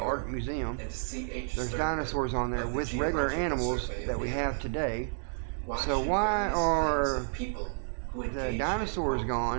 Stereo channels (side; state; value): left; silent; digital silence